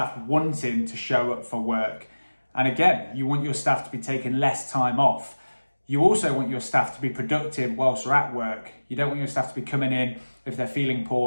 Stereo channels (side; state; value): both; inverted; correlation -1.00